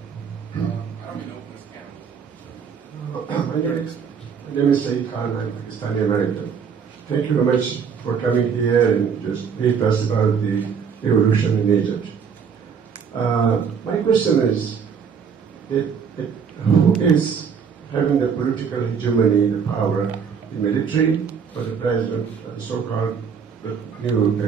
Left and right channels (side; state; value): left; quieter; 6.6 dB